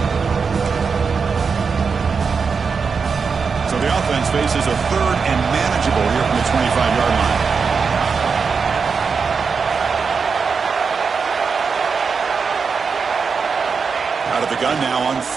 So the offense faces a third and manageable here from the 25-yard line. Out of the gun now on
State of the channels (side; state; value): left; quieter; 5.4 dB